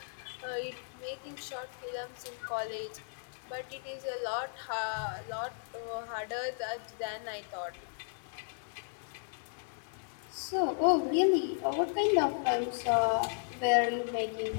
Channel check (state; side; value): silent; right; digital silence